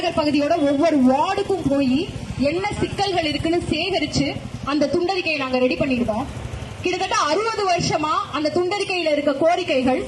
பகுதியோட ஒவ்வொரு வார்டுக்கும் போய் என்ன சிக்கல்கள் இருக்குன்னு சேகரிச்சு அந்த துண்டறிக்கையை நாங்க ரெடி பண்ணிருக்கோம். கிட்டத்தட்ட 60 வருஷமா அந்த துண்டறிக்கையில இருக்க கோரிக்கைகள்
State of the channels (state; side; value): identical; both; correlation 1.00